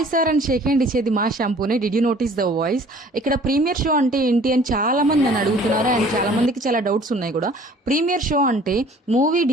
sir అని Sheikh hand ఇచ్చేది మా షాంపూనే. Did you notice the voice? ఇక్కడ ప్రీమియర్ షో అంటే ఏంటి అని చాలా మంది నన్ను అడుగుతున్నారు అండ్ చాలా మందికి చాలా డౌట్స్ ఉన్నాయి కూడా. ప్రీమియర్ షో అంటే మూవీ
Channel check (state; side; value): normal; both; correlation 0.52